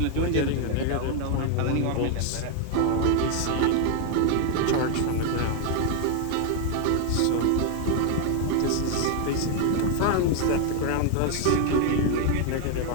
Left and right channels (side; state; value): both; different; correlation 0.01